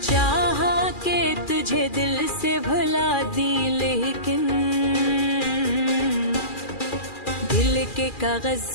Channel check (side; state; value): right; late; 2.4 ms